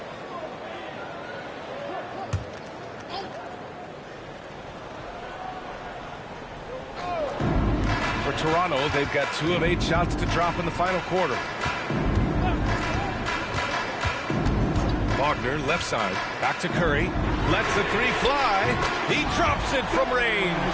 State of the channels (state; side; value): identical; both; correlation 1.00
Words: For Toronto, they've got 2 of 8 shots to drop in the final quarter. Wagner, left side, back to Curry, lets the three fly, he drops it from range.